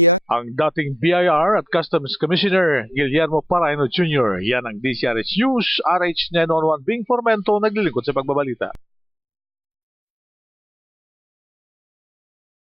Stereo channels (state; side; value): normal; both; correlation 0.84